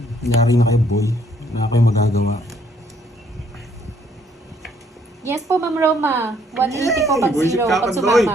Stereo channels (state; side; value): normal; both; correlation 0.66